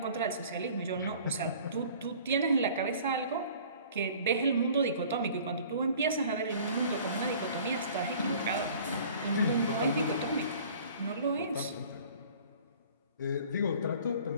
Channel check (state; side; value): inverted; both; correlation -0.49